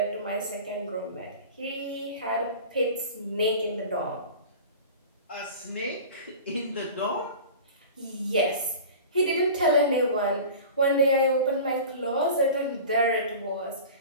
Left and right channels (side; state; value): both; inverted; correlation -0.36